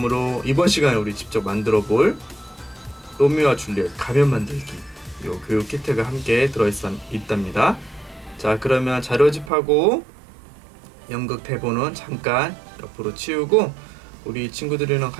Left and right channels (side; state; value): left; drops out; at 9.5 s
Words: 이번 시간에 우리 직접 만들어 볼 로미오와 줄리엣 가면 만들기 요 교육 키트가 함께 있답니다. 자, 그러면 자료집하고 연극 대본은 잠깐 옆으로 치우고 우리 친구들이랑